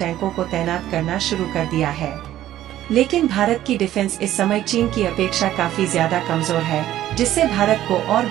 को तैनात करना शुरू कर दिया है। लेकिन भारत की डिफेंस इस समय चीन की अपेक्षा काफी ज्यादा कमजोर है, जिससे भारत को और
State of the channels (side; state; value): left; quieter; 13.1 dB